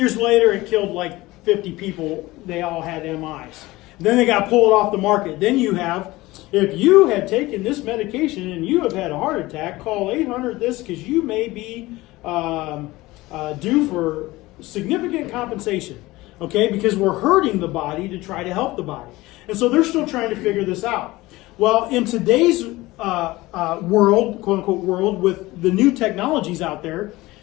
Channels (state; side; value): quieter; right; 19.5 dB